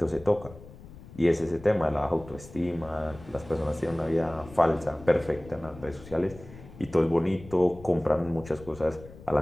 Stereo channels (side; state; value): left; noise; rumble, 18 dB below the sound